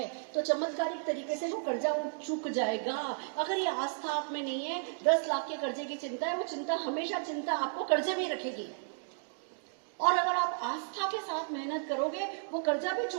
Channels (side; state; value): left; silent; digital silence